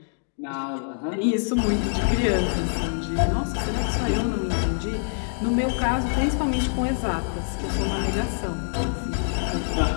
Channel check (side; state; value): right; silent; digital silence